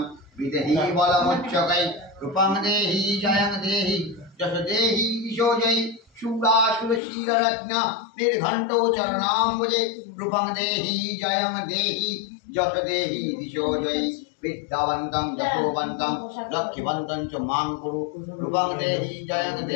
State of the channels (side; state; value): right; drops out; at 7.0 s